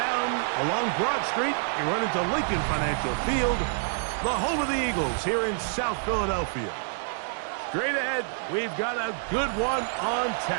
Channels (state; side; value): silent; left; digital silence